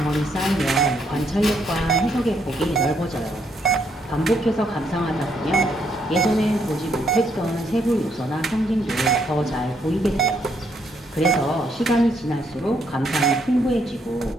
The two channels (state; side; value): normal; both; correlation 0.73